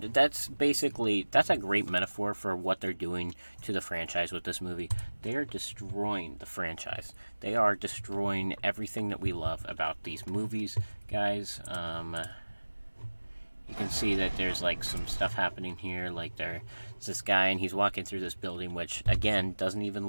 that's a great metaphor for what they're doing to the franchise with this movie. They are destroying the franchise. They are destroying everything that we love about these movies, guys. You can see that there's like some stuff happening here. Like, there's this guy and he's walking through this building, which again doesn't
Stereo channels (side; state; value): both; inverted; correlation -1.00